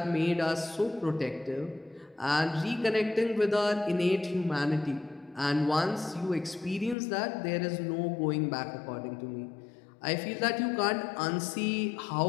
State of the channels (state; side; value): drops out; right; at 7.0 s